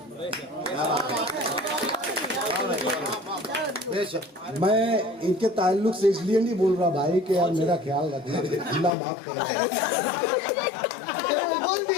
मैं इनके ताल्लुक से इसलिए नहीं बोल रहा भाई कि यार मेरा ख्याल रखना, अल्लाह माफ करे।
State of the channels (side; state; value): right; drops out; at 8.9 s